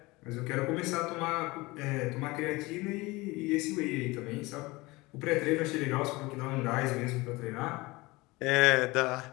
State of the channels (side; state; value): right; quieter; 22.3 dB